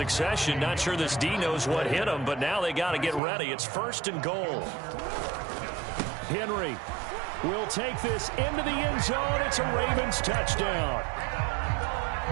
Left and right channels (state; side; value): drops out; left; at 3.2 s